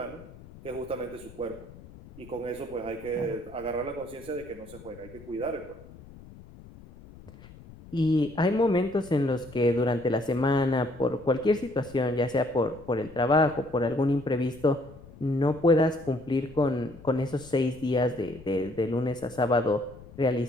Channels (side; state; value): left; noise; rumble, 19 dB below the sound